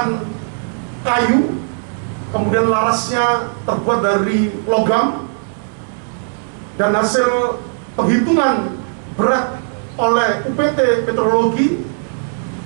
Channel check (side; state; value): left; silent; 61 dB below the other